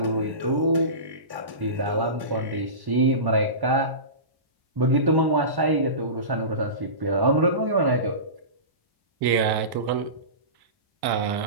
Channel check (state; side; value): late; left; 1.1 ms